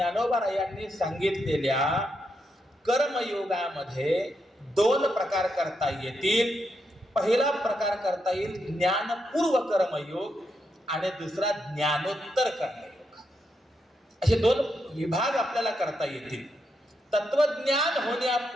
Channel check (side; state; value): both; normal; correlation 0.82